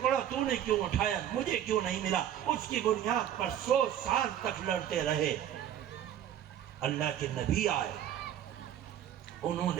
تو نے کیوں اٹھایا، مجھے کیوں نہیں ملا، اس کی بنیاد پر 100 سال تک لڑتے رہے۔ اللہ کے نبی آئے، انہوں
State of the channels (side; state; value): left; quieter; 10.6 dB